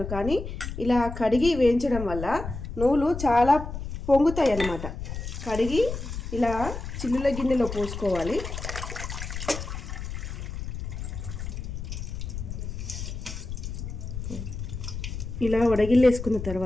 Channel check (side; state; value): left; noise; rumble, 7 dB below the sound